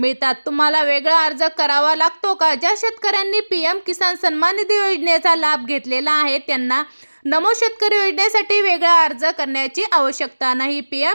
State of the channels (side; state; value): both; inverted; correlation -1.00